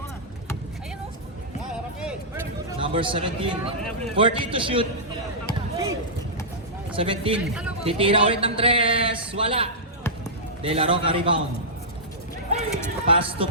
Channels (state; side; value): normal; both; correlation -0.14